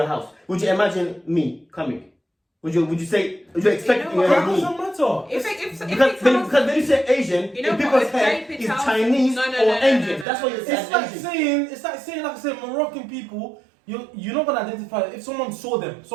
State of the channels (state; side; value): drops out; left; at 10.2 s